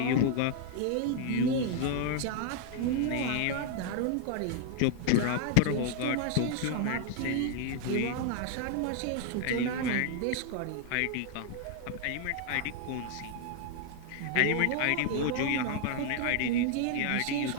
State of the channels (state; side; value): different; both; correlation 0.00